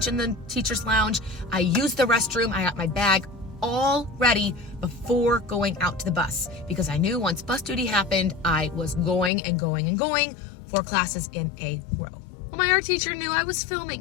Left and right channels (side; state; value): right; drops out; at 9.3 s